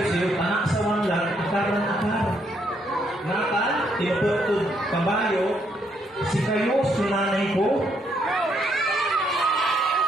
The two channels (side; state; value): both; normal; correlation 0.73